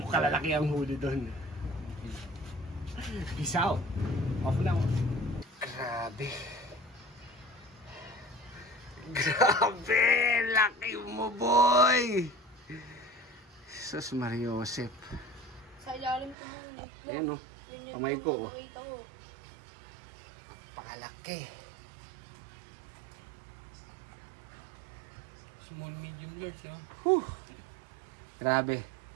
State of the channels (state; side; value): drops out; left; at 16.4 s